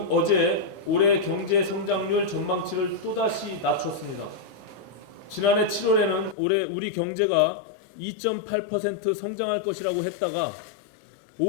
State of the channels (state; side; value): drops out; right; at 6.4 s